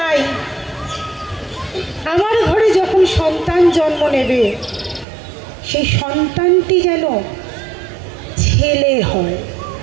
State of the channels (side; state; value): left; drops out; at 5.1 s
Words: আমার ঘরে যখন সন্তান জন্ম নেবে সেই সন্তানটি যেন ছেলে হয়।